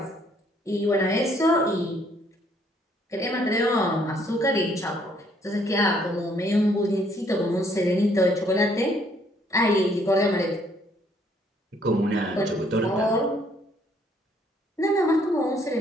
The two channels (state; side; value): normal; both; correlation 0.65